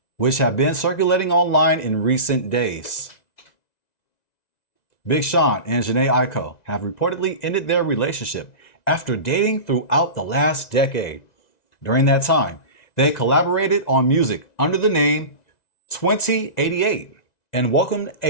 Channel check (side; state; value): right; late; 1.9 ms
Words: which have been circulating online in recent days. Big Sean and Jhené Aiko have reportedly ended their relationship after dating throughout the last decade. During that time, they collaborated on music under the name 2088 and welcomed